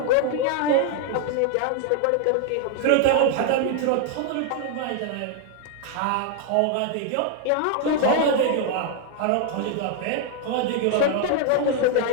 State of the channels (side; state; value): both; different; correlation 0.00